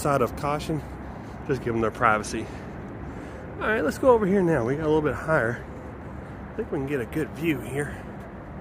of caution. Just give them their privacy. Alright, let's go over here now. We got a little bit higher. I think we can get a good view here.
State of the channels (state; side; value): identical; both; correlation 1.00